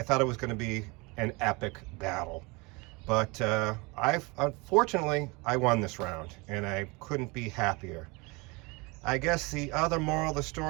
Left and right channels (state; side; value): quieter; left; 26.6 dB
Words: thought it was going to be an epic battle. But unfortunately, I won this round, and I couldn't be happier. I guess the other moral of the